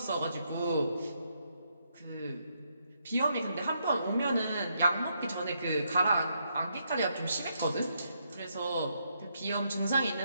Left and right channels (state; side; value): inverted; both; correlation -0.78